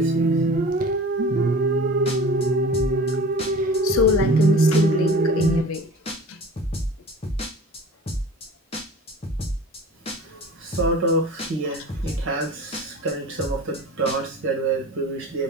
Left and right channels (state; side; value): normal; both; correlation 0.40